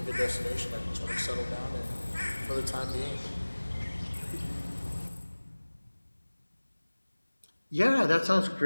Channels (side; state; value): both; inverted; correlation -1.00